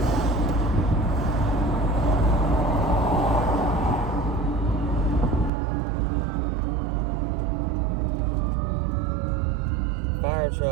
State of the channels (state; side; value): drops out; left; at 5.5 s